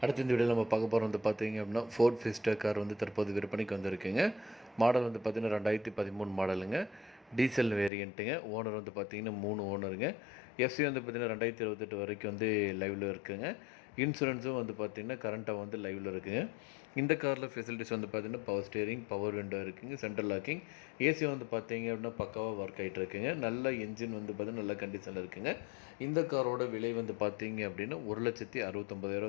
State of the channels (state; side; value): drops out; right; at 7.9 s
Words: அடுத்த இந்த வீடியோவில் நம்ம பார்க்க போகிறோம் வந்து பார்த்தீங்க அப்படின்னா ஃபோர்ட் ஃபிஸ்டா கார் வந்து தற்போது விற்பனைக்கு வந்திருக்குங்க. மாடல் வந்து பார்த்தீங்கன்னா 2013 மாடலுங்க. டீசல் வேரியண்ட்டுங்க. ஓனர் வந்து பார்த்தீங்கன்னா 3 ஓனருங்க. எஃப்சி வந்து பார்த்தீங்கன்னா 2028 வரைக்கும் வந்து லைவில் இருக்குங்க. இன்சூரன்ஸும் வந்து பார்த்தீங்கன்னா கரண்ட்டாக வந்து லைவில் இருக்குங்க. இந்த காரில் ஃபெசிலிட்டிஸ் வந்து பார்த்தீங்கன்னா பவர் ஸ்டேரிங், பவர் விண்டோ இருக்குங்க, சென்ட்ரல் லாக்கிங், ஏசி வந்து பார்த்தீங்க அப்படின்னா பக்காவாக ஒர்க் ஆகிட்டு இருக்குங்க. நல்ல என்ஜின் வந்து பார்த்தீங்கன்னா நல்ல கண்டிஷனில் இருக்குங்க. இந்த காரோட விலை வந்து பார்த்தீங்க அப்படின்னா